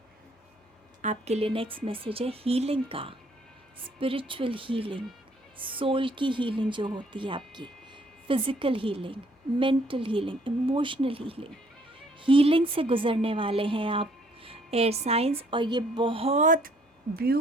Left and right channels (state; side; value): normal; both; correlation 0.63